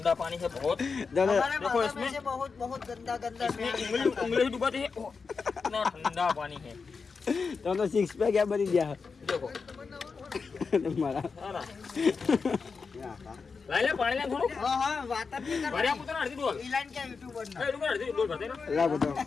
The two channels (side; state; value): right; quieter; 5.0 dB